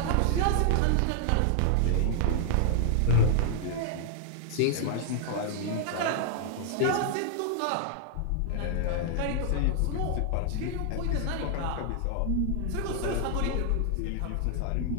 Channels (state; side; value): different; both; correlation 0.00